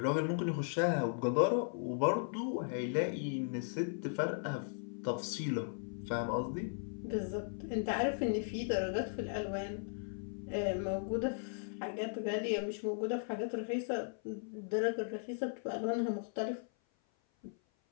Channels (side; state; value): right; silent; 53 dB below the other